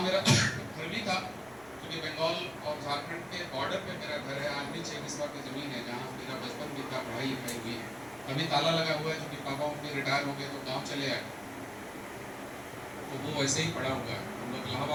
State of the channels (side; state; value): right; noise; rumble, 26 dB below the sound